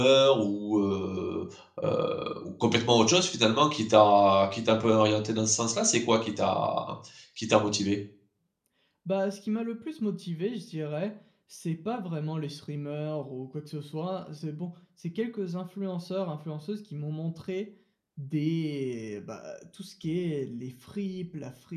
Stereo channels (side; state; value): both; identical; correlation 1.00